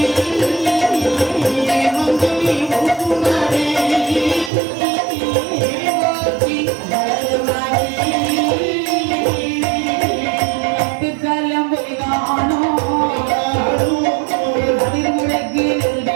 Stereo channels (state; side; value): drops out; left; at 4.5 s